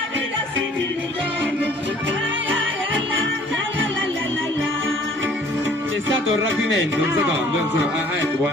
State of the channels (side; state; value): both; normal; correlation 0.55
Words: sentilo torno. C'è stato un rapimento, un secondo, un secondo. Ah, ecco,